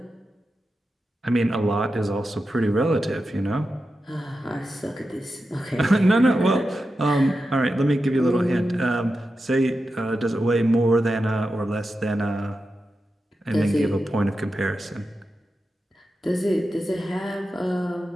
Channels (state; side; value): normal; both; correlation 0.90